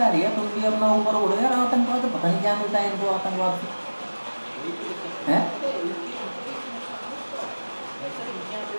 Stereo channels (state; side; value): inverted; both; correlation -1.00